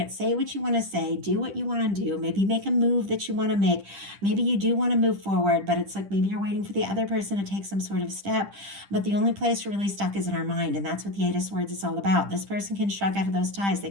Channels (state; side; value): late; left; 10 ms